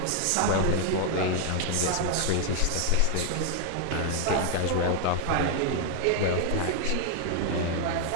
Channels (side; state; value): both; different; correlation 0.00